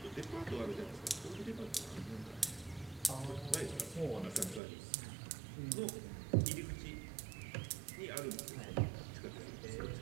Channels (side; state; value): left; drops out; at 4.6 s